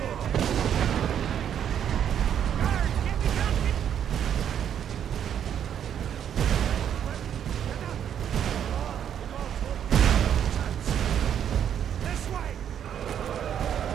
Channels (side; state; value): left; quieter; 9.2 dB